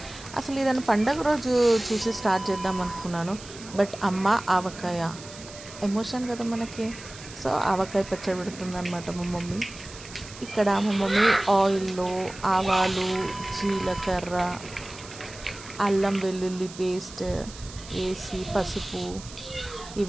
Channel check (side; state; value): right; noise; hiss, 16 dB below the sound